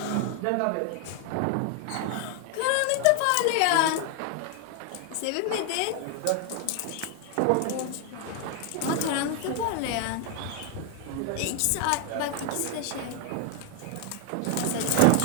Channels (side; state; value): both; different; correlation 0.01